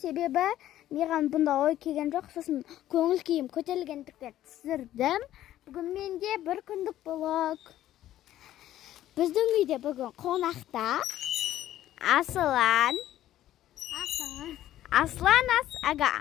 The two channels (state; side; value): quieter; right; 13.1 dB